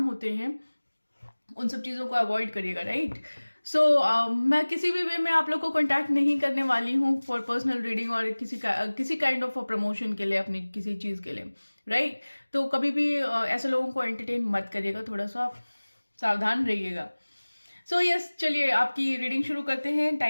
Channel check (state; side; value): inverted; both; correlation -1.00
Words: होते हैं, उन सब चीजों को अवॉइड करिएगा, राइट। सो मैं किसी भी वे में आप लोग को कांटेक्ट नहीं करने वाली हूँ फॉर पर्सनल रीडिंग और किसी काइंड ऑफ प्रमोशन के लिए, अपनी किसी चीज के लिए, राइट। तो कभी भी ऐसे लोगों को एंटरटेन मत करिएगा, थोड़ा सा सावधान रहिएगा। सो यस, चलिए आपकी रीडिंग शुरू करते हैं